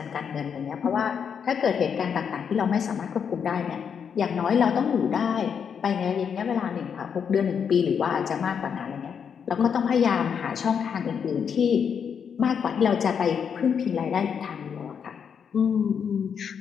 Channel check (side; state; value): right; quieter; 7.2 dB